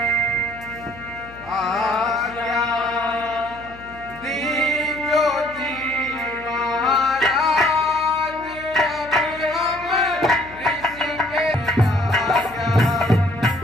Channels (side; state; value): left; noise; hum, 20 dB below the sound